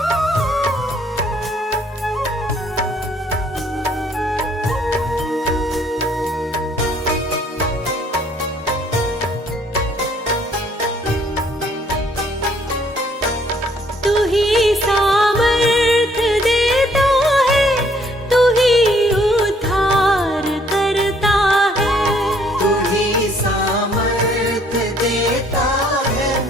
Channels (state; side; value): normal; both; correlation 0.63